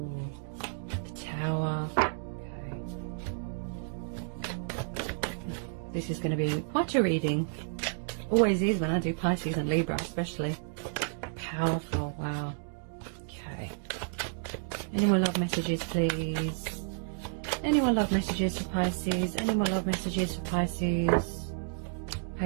the Tower. Okay. This is going to be quite a reading. Always is when I do Pisces and Libra, especially. Powerful, wow. Okay. Any more love messages, please? Any more love messages for Pisces? Any more love messages for Pisces?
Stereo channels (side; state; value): left; silent; digital silence